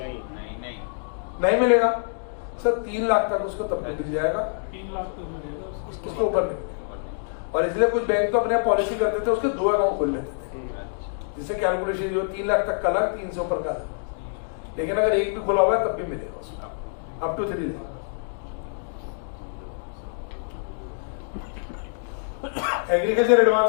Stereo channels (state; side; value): silent; right; digital silence